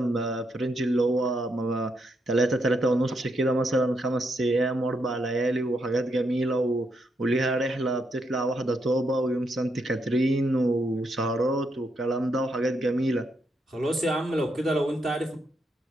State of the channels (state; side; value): normal; both; correlation 0.79